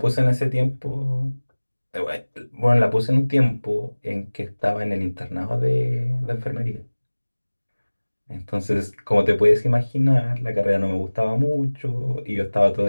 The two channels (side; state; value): both; inverted; correlation -1.00